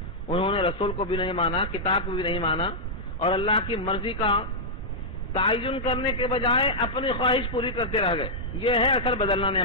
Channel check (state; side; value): normal; both; correlation -0.07